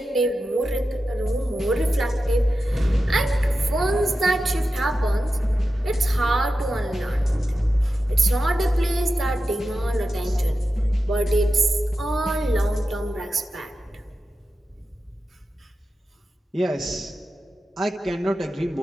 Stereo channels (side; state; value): both; normal; correlation 0.91